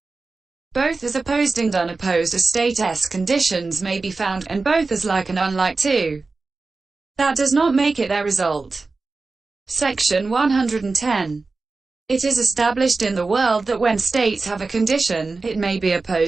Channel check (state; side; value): quieter; left; 3.9 dB